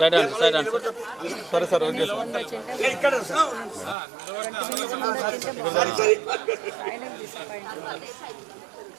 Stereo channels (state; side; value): drops out; left; at 4.0 s